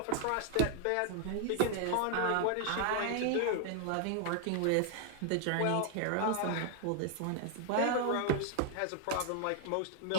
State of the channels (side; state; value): both; different; correlation 0.00